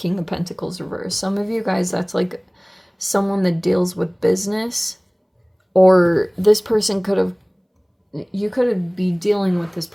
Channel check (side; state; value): both; identical; correlation 1.00